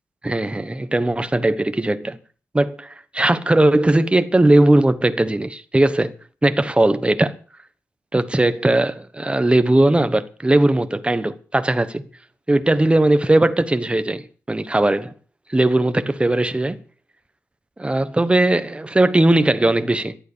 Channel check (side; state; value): both; normal; correlation 0.96